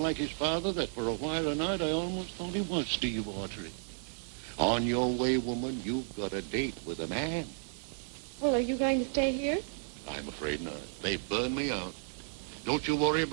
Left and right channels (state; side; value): silent; left; 56 dB below the other